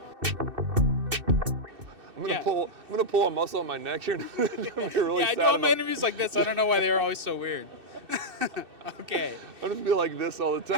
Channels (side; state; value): left; late; 2.6 ms